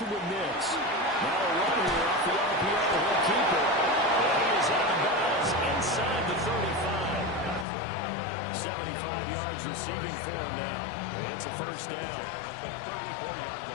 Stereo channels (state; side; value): drops out; right; at 7.7 s